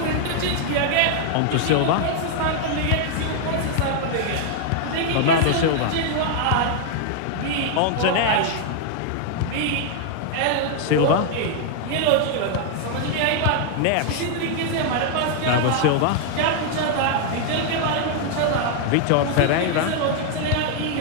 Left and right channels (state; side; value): different; both; correlation 0.00